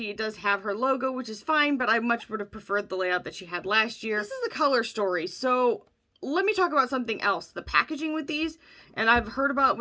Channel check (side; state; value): both; identical; correlation 1.00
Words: It does have her logo, which is fine, but I much would have preferred the layout that she had last year. This is the color story, so let me talk about something else. The packaging with these, and I've heard about